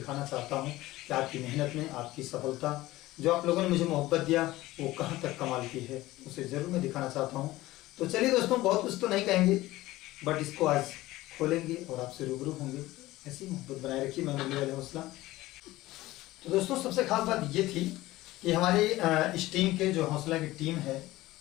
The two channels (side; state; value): right; quieter; 17.5 dB